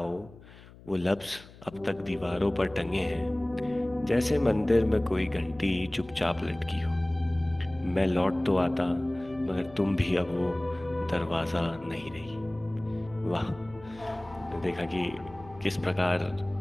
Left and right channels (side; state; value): left; noise; hum, 21 dB below the sound